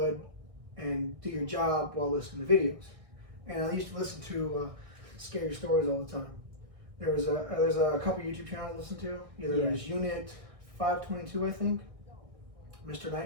and do your job while listening to videos. And I used to listen to scary stories all the time. There's a couple YouTube channels I listen to. Either there's Unit 522, I think, Mr.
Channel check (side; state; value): left; late; 1.6 ms